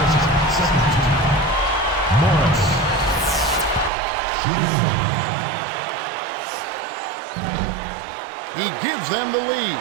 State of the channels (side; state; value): left; drops out; at 3.9 s